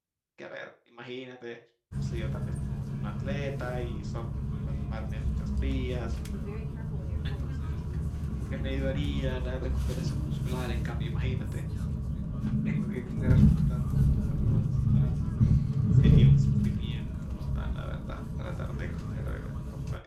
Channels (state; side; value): identical; both; correlation 1.00